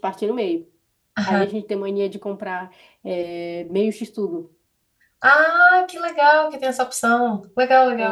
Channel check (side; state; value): both; identical; correlation 1.00